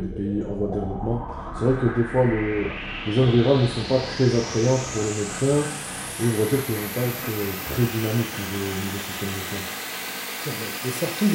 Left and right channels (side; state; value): both; identical; correlation 1.00